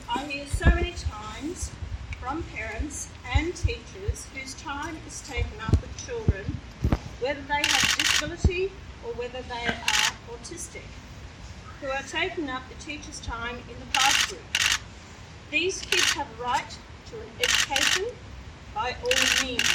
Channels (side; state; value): both; identical; correlation 1.00